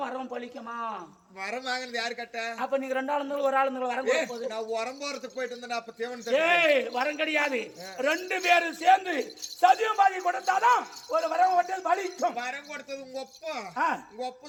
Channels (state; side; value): identical; both; correlation 1.00